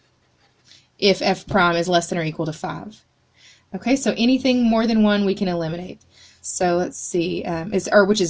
if f prime is less than or equal to 5. Okay, so anything more than 1 we can eliminate. So let's see, which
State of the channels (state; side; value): identical; both; correlation 1.00